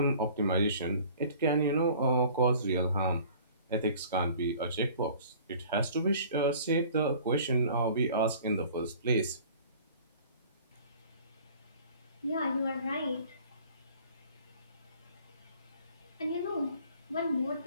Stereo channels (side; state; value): both; inverted; correlation -0.49